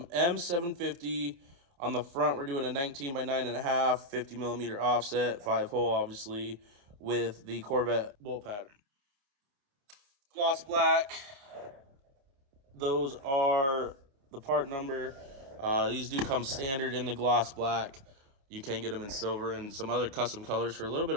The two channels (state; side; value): late; left; 28 ms